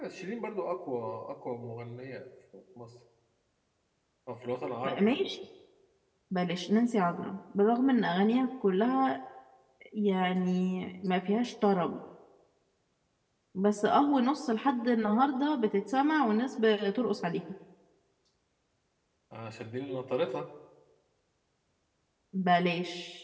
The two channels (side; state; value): both; identical; correlation 1.00